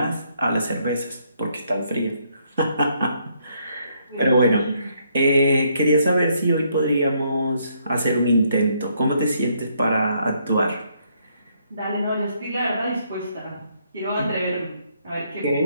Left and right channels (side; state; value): both; inverted; correlation -0.71